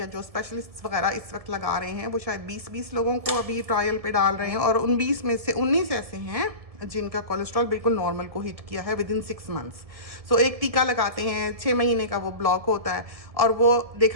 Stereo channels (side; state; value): left; late; 1.7 ms